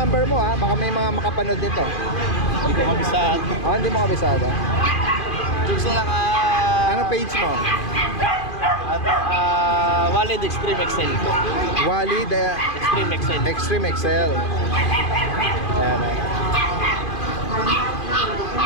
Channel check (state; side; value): late; right; 2.4 ms